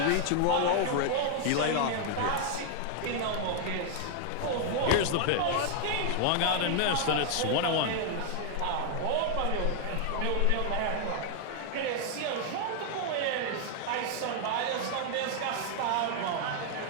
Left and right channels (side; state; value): both; different; correlation 0.00